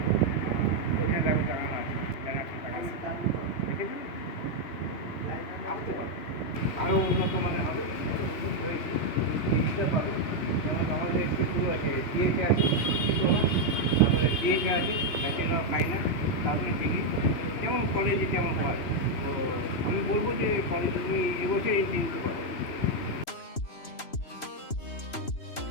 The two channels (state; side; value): late; right; 3.0 ms